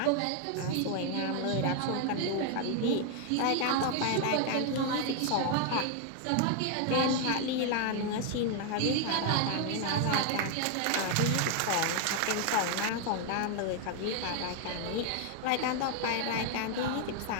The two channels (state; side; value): different; both; correlation 0.01